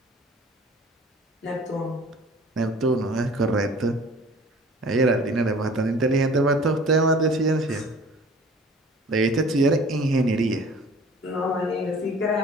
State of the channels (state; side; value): normal; both; correlation 0.47